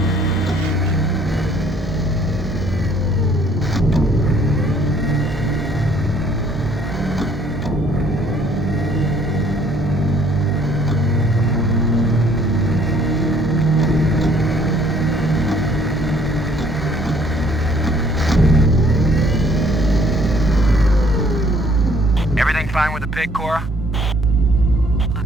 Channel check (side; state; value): both; normal; correlation 0.61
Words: Everything fine with the Pig, Cora?